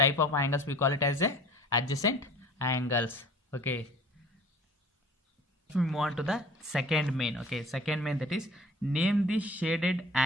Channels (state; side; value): normal; both; correlation 0.46